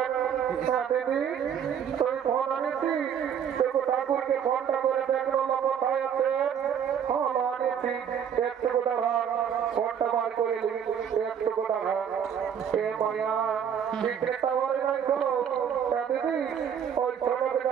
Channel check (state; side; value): quieter; left; 8.2 dB